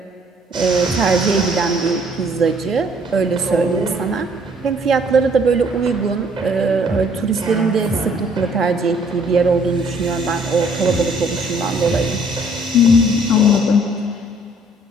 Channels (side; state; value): both; normal; correlation 0.61